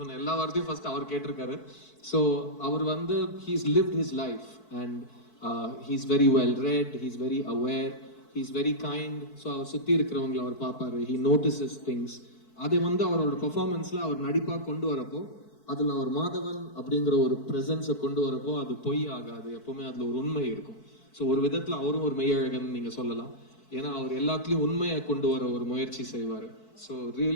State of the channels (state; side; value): late; right; 4.6 ms